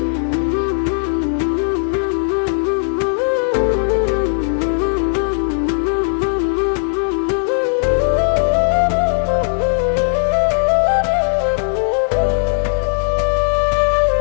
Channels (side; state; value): right; silent; 63 dB below the other